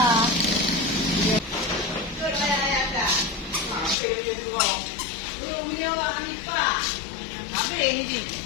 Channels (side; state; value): right; drops out; at 4.0 s